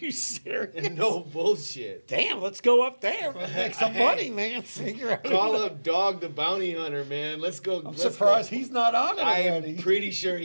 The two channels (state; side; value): inverted; both; correlation -1.00